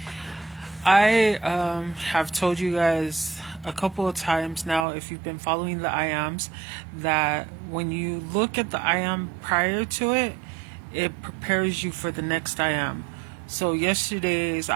I have told you guys a couple of times now, if you've been following the I ams, that when you look at the I am prior to it, it prepares you for the next I am. So yesterday's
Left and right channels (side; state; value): left; drops out; at 4.9 s